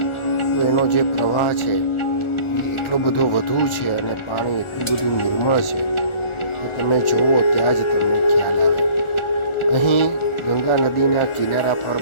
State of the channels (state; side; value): late; right; 1.4 ms